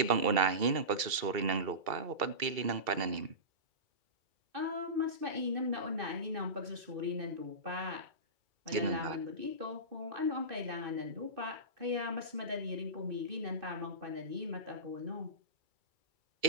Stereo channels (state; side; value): late; left; 2.3 ms